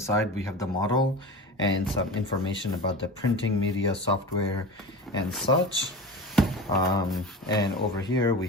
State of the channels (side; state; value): both; normal; correlation 0.31